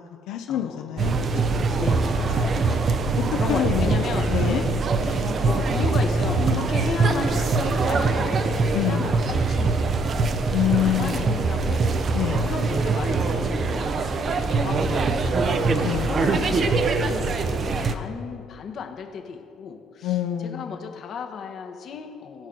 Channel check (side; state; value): both; normal; correlation 0.68